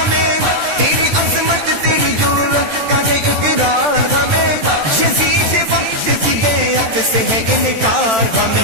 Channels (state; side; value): late; left; 13 ms